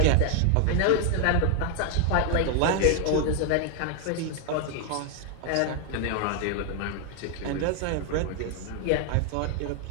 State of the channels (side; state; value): both; different; correlation 0.00